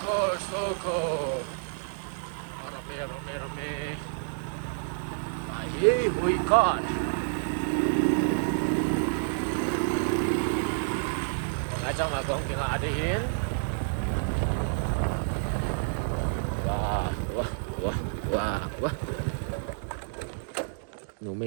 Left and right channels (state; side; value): silent; left; digital silence